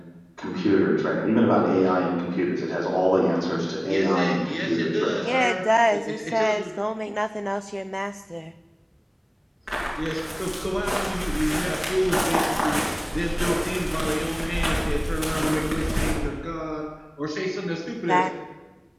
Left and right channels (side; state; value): both; identical; correlation 1.00